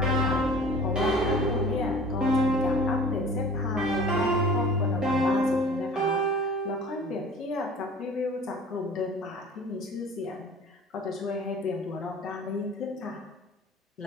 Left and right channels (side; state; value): both; normal; correlation 0.45